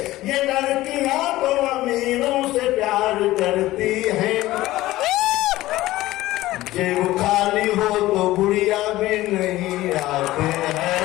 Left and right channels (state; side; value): quieter; right; 16.7 dB